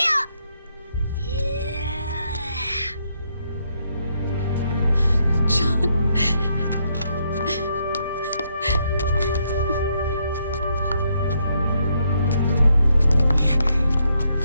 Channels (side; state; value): both; inverted; correlation -0.75